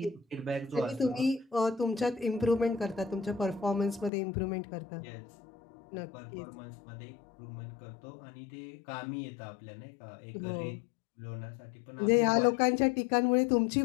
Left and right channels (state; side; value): drops out; right; at 4.1 s